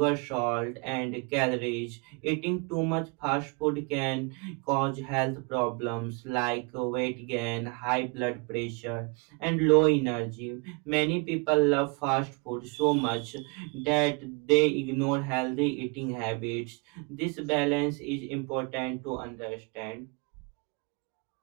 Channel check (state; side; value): quieter; left; 32.3 dB